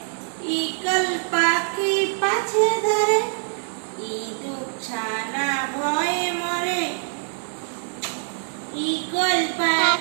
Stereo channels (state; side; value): silent; left; 63 dB below the other